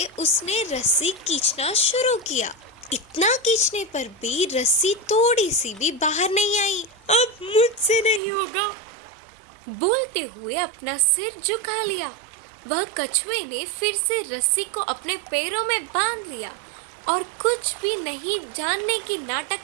उसने रस्सी खींचना शुरू किया। इतना खींचने पर भी रस्सी थोड़ी सी भी बाहर नहीं आई। अब मुझसे नहीं होगा, बोलते हुए अपना सिर झुका लिया। वह कछुए ने फिर से रस्सी को अपने पैरों में बांध लिया और कुछ भी नहीं जानने की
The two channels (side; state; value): left; drops out; at 8.2 s